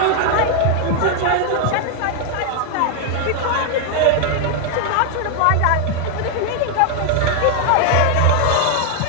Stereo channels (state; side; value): different; both; correlation 0.00